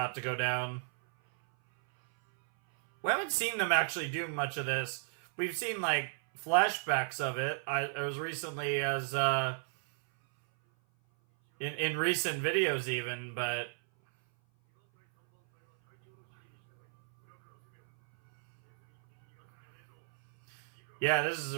to go down. We haven't seen them actually do much of this. We've seen, like, flashbacks of it. It was recently as, in recent videos even, but... Yeah, this is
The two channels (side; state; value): left; silent; 56 dB below the other